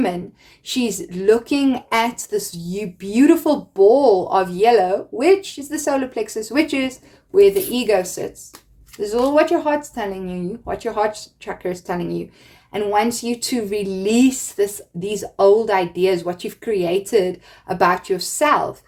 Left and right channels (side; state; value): both; identical; correlation 1.00